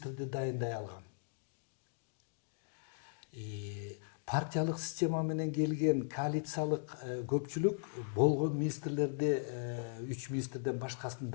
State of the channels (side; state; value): right; silent; digital silence